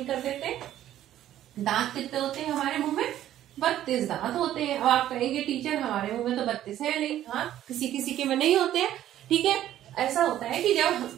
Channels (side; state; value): left; quieter; 12.3 dB